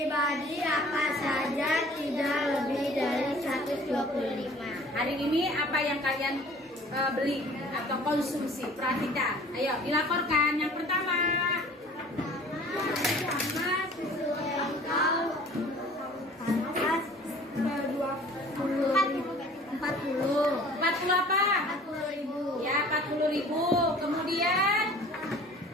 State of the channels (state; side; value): normal; both; correlation 0.49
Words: apa saja tidak lebih dari 125. Hari ini apa yang kalian beli atau konsumsi? Perhatikan. Ayo, dilaporkan. Yang pertama. Sama susu engkau panas 40 apa? 40.000. Ya, 40.000. Kemudian